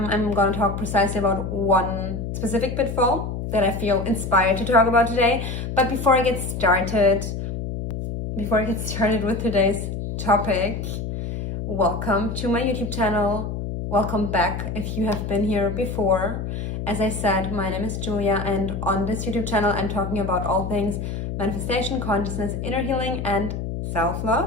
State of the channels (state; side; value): noise; left; hum, 5 dB below the sound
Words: going to talk precisely about one specific pitfall that I feel inspired to talk about today. But before I get started with today's topic, welcome to my YouTube channel. Welcome back if you have been here before. As I said, my name is Julia, and on this YouTube channel, I'm talking about all things manifestation, consciousness, inner healing, and